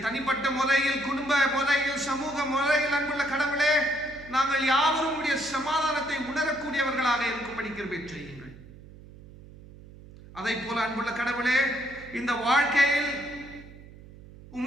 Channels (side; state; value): right; noise; hum, 19 dB below the sound